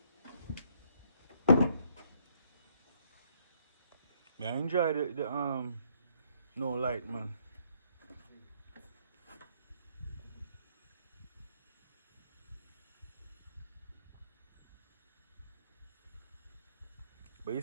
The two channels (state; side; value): inverted; both; correlation -0.69